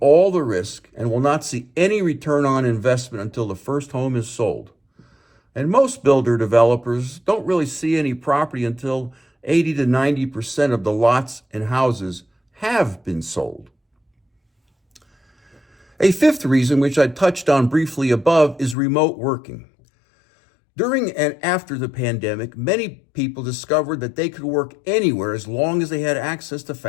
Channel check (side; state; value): right; drops out; at 18.8 s